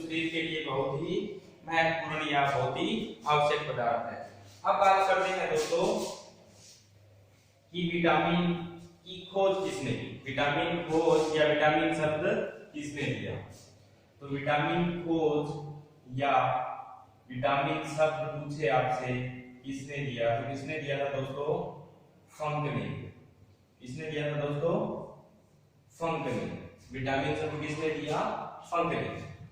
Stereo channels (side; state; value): both; identical; correlation 1.00